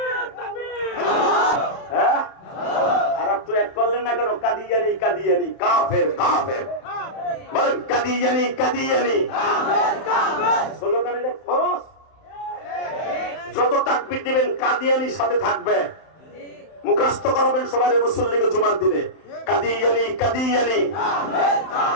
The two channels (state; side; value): late; right; 31 ms